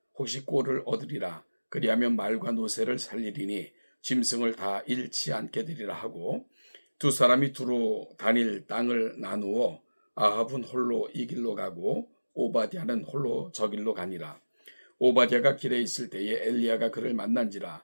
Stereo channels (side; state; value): both; inverted; correlation -1.00